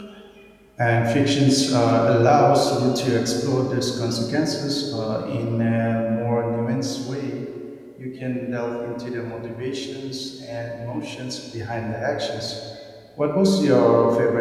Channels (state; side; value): identical; both; correlation 1.00